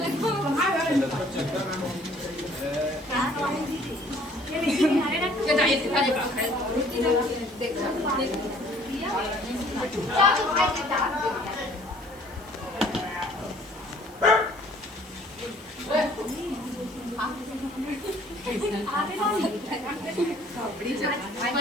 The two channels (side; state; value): left; noise; hiss, 25 dB below the sound